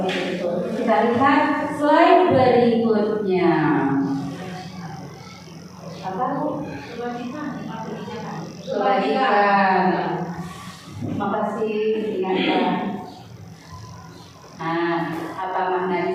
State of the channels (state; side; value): identical; both; correlation 1.00